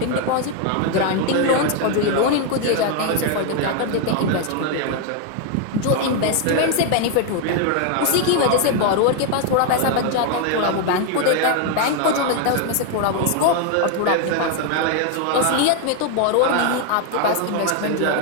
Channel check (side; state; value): both; different; correlation 0.01